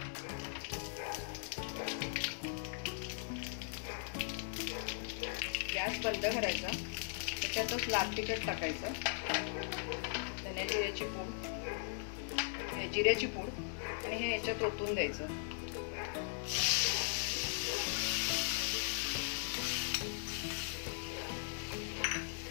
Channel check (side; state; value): right; silent; digital silence